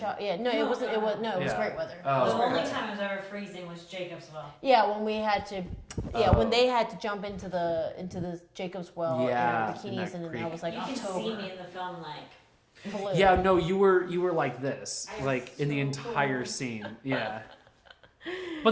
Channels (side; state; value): both; identical; correlation 1.00